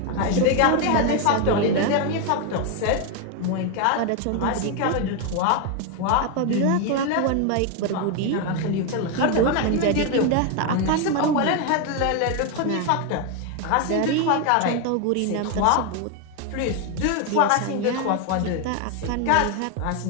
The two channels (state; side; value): different; both; correlation 0.01